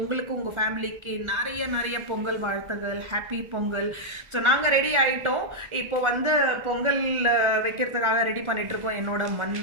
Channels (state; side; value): late; left; 1.4 ms